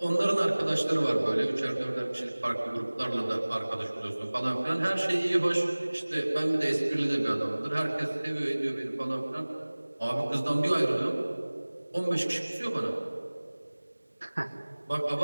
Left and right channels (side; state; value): both; inverted; correlation -1.00